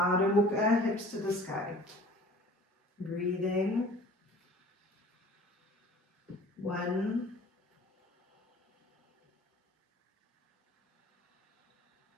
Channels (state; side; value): normal; both; correlation 0.46